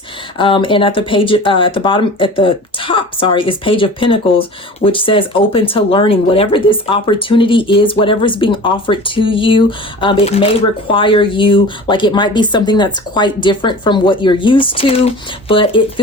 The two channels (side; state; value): both; normal; correlation 0.38